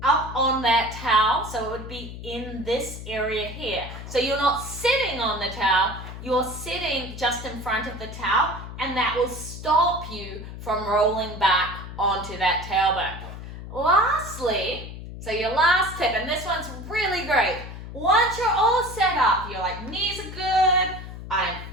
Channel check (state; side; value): noise; left; hum, 11 dB below the sound